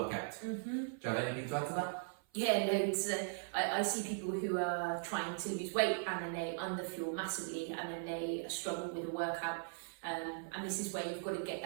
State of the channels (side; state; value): left; silent; 52 dB below the other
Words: Do you have anything to add to that? Yeah, no, I see people who are trying to lose weight and then they underfuel massively and then they struggle with a workout. And this is where you've got to get